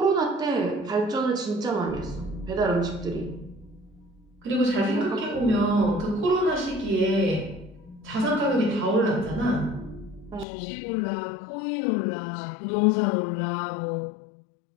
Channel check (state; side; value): drops out; right; at 10.5 s